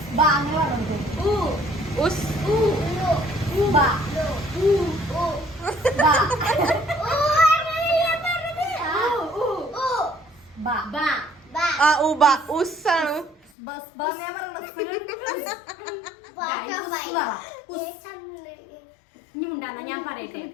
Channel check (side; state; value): right; drops out; at 13.5 s